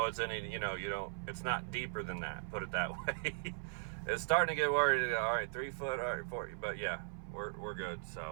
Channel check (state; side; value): silent; left; 52 dB below the other